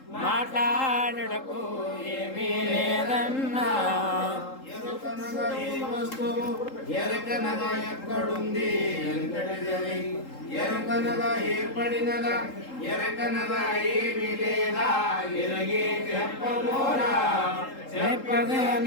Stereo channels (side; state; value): right; late; 3.8 ms